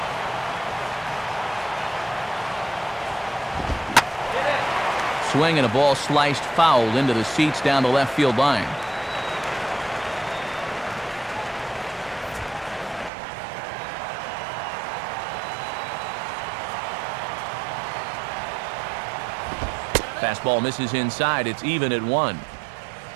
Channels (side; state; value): left; drops out; at 13.1 s